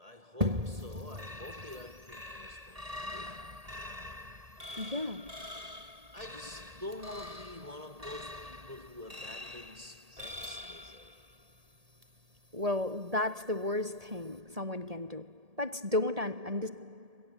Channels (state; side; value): late; left; 1.8 ms